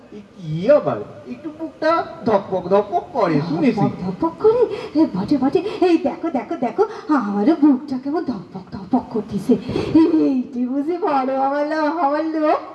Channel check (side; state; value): both; identical; correlation 1.00